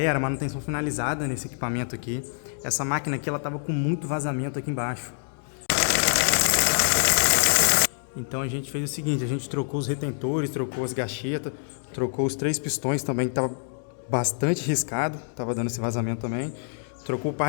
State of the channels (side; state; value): right; silent; digital silence